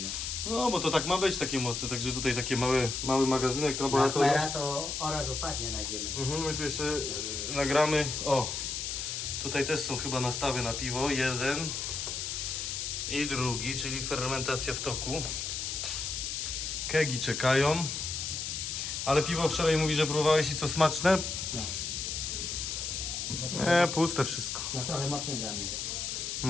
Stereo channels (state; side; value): noise; left; hiss, 3 dB below the sound